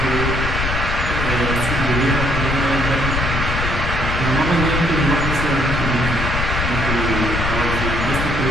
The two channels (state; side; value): noise; left; rumble, 2 dB below the sound